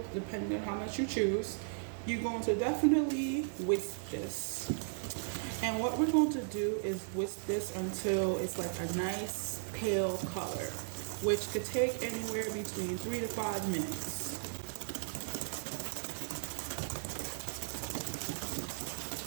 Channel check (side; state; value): left; silent; digital silence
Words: depending on how much you choose. You're going to definitely whisk this. And what we're going to do is whisk this until it's like a nice pale color, which could take anywhere between 3 to 5 minutes.